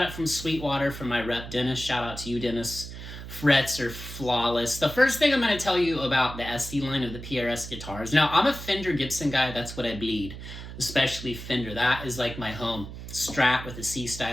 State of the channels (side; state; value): right; noise; hum, 11 dB below the sound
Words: it from Sweetwater from my rep, Dennis. Shout out to you, Dennis. Frets are flawless. The first thing I'm going to tell you about the SE line of the PRS guitars. Now, I'm a Fender Gibson guy. That's what I bleed, especially Fender. That is like my home. Strat with a